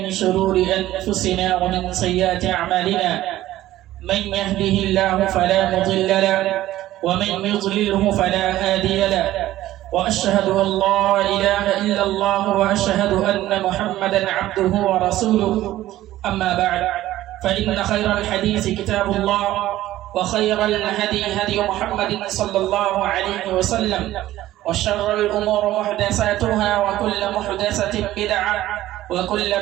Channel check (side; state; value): left; quieter; 14.8 dB